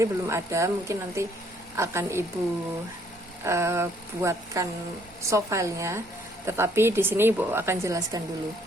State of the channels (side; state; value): both; normal; correlation 0.65